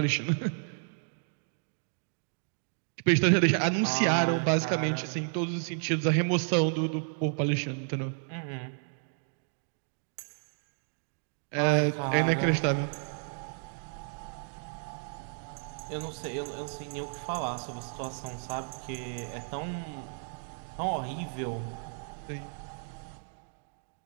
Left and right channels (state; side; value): silent; left; 56 dB below the other